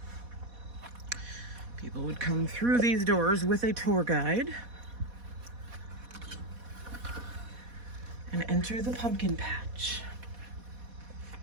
People would come through these doors with a tour guide and enter the pumpkin patch.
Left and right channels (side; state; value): left; late; 4.1 ms